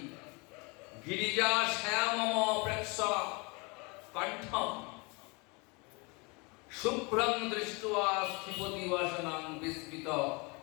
গিরিজা শ্যামম প্রেক্ষ কণ্ঠম শুভ্রং দৃष्ट्वा স্থিপতি বাসনাং বিস্মিত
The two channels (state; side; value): quieter; right; 29.1 dB